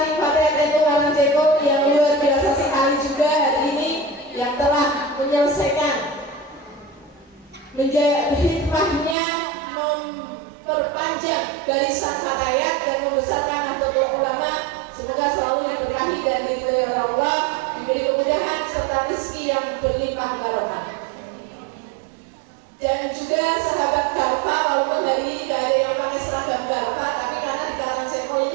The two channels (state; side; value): drops out; left; at 9.2 s